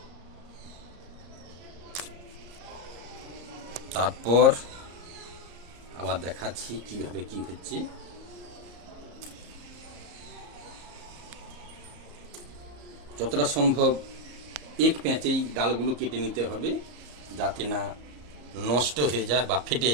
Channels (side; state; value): left; late; 34 ms